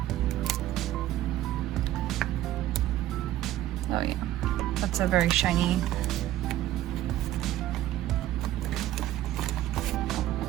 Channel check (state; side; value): quieter; left; 13.8 dB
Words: Oh yeah, that's a very shiny.